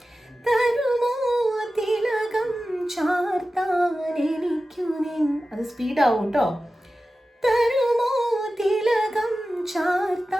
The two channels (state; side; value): normal; both; correlation 0.94